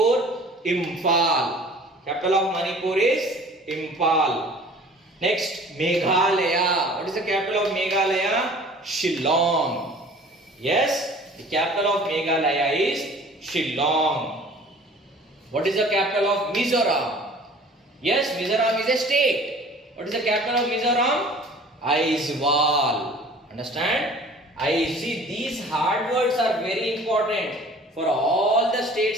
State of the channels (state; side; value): normal; both; correlation 0.48